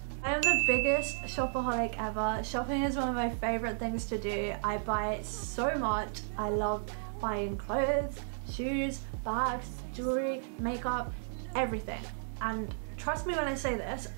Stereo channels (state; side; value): silent; left; digital silence